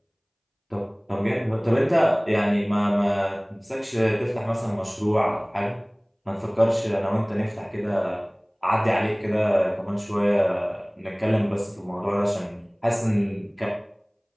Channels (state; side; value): identical; both; correlation 1.00